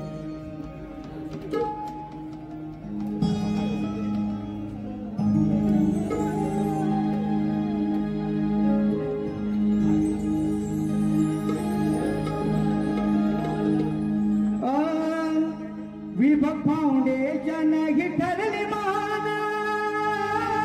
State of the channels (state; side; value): identical; both; correlation 1.00